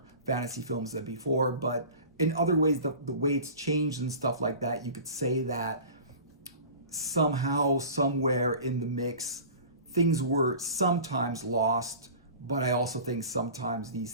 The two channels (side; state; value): both; inverted; correlation -0.39